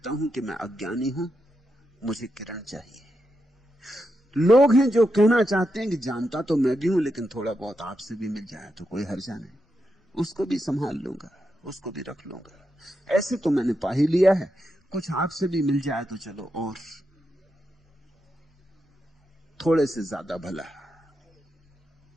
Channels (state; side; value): normal; both; correlation 0.85